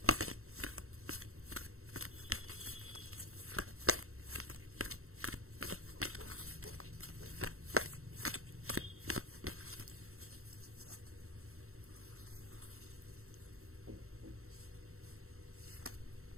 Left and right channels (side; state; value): left; late; 0.63 ms